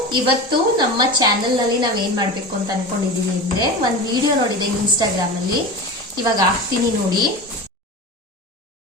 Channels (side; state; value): both; normal; correlation 0.29